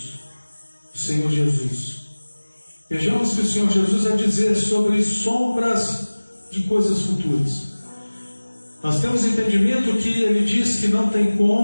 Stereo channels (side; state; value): both; inverted; correlation -1.00